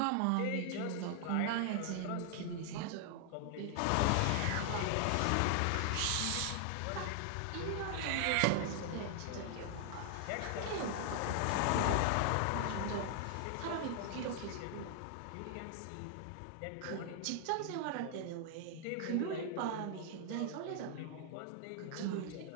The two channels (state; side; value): different; both; correlation 0.00